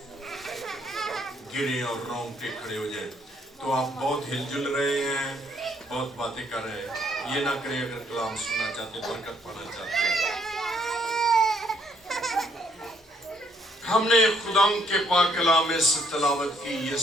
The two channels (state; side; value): normal; both; correlation 0.68